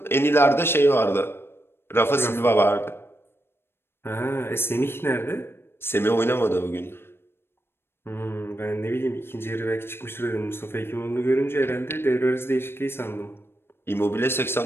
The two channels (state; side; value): late; right; 0.11 ms